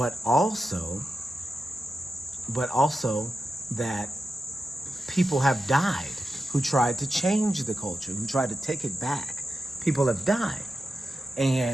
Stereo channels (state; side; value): normal; both; correlation 0.90